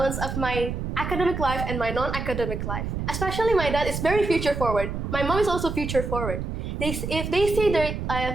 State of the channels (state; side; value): noise; right; rumble, 4 dB below the sound